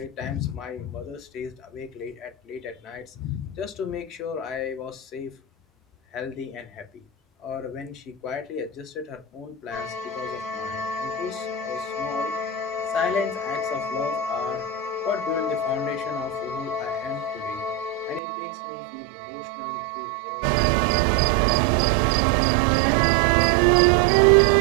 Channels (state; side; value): drops out; left; at 18.2 s